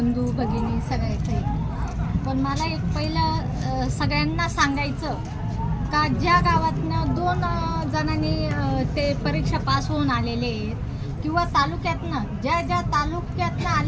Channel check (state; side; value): identical; both; correlation 1.00